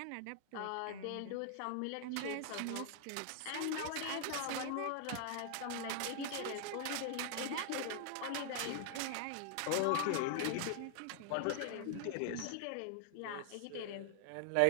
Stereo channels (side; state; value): both; different; correlation 0.00